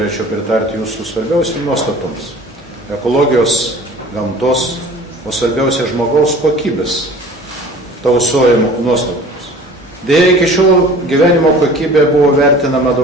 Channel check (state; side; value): normal; both; correlation 0.45